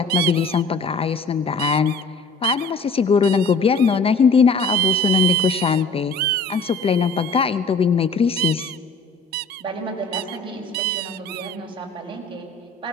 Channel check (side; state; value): right; quieter; 3.2 dB